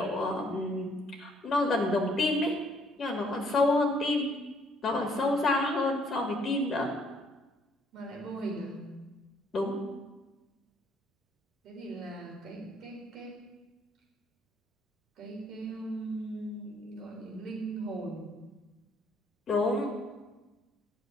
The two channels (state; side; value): normal; both; correlation 0.65